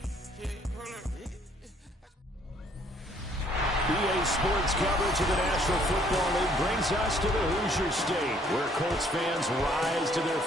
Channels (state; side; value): normal; both; correlation 0.63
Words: Sports coverage of the National Football League brings us to the Hoosier State, where Colts fans rise to their